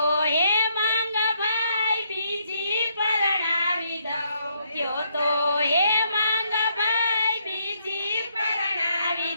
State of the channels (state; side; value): inverted; both; correlation -0.73